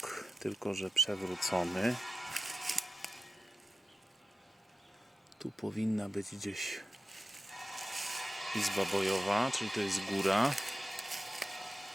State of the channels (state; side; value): normal; both; correlation 0.92